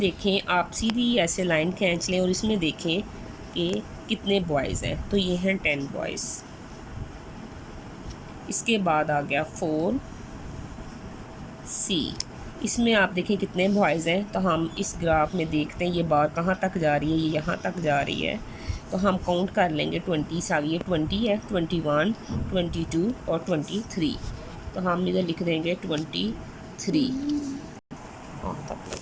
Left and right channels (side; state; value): both; identical; correlation 1.00